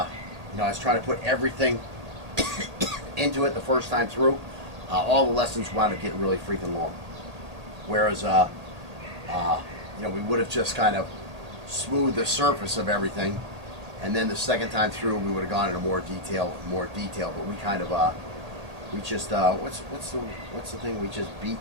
was trying to put everything into it the first time through. All the lessons wound up getting really freaking long. Whereas, we would have just kind of smoothed the surface of everything. And then the second time through, we would have gone into more detail. But we kind of, we just, what's the thing? We just beat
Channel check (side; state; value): left; late; 1.8 ms